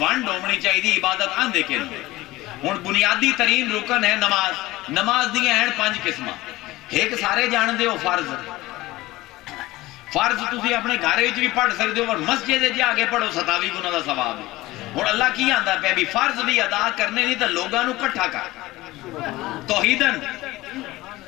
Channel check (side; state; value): right; quieter; 18.7 dB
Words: ہونی چاہیے. عبادت آندے کیوں؟ ہن بنیادی ترین رکن ہے نماز. نماز دی ہیں 5 قسماں. ایک سارے جاندے ہو فرض. فرض تسی اپنے گھر وچ بھی پڑھ سکدے ہو اور مسجد وچ جا کے پڑھو 27 گنا دا ثواب ہے. ہن اللہ کی آندا پیا بھی فرض بھی ادا کرنے نہیں تے لوگاں نو اکٹھا کر. توحیدن